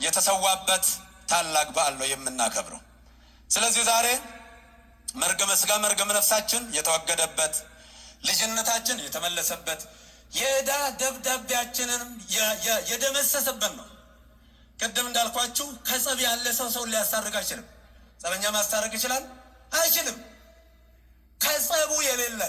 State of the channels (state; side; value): identical; both; correlation 1.00